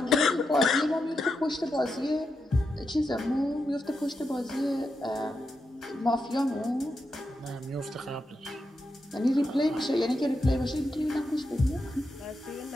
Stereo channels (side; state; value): both; normal; correlation 0.86